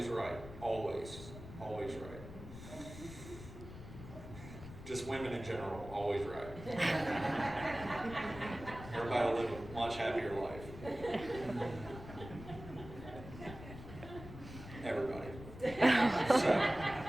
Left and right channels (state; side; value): noise; left; rumble, 13 dB below the sound